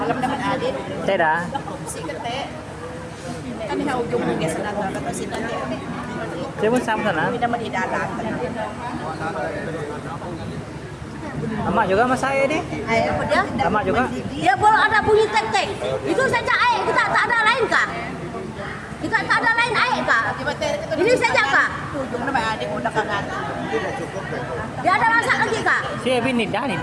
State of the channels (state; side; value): identical; both; correlation 1.00